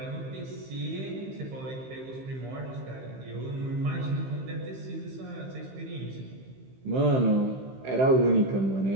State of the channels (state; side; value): late; left; 15 ms